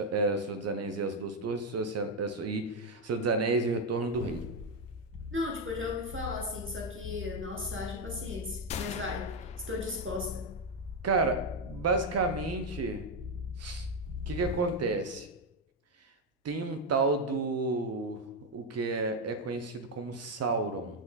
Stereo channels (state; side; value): normal; both; correlation 0.06